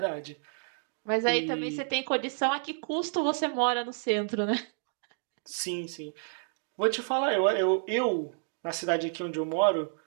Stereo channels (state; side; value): silent; left; digital silence